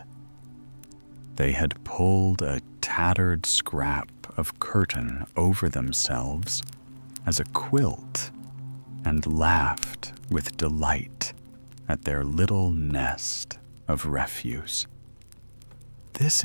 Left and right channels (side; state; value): both; inverted; correlation -1.00